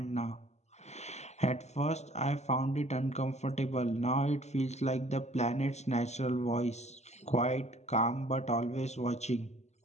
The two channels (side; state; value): right; late; 0.33 ms